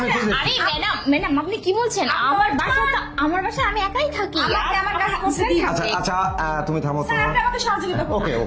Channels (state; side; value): identical; both; correlation 1.00